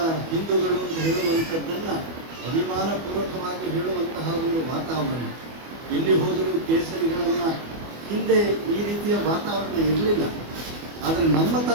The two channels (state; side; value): late; left; 24 ms